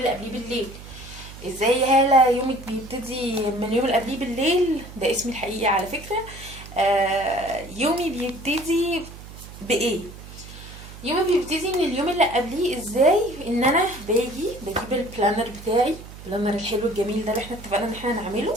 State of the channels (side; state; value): right; noise; hum, 15 dB below the sound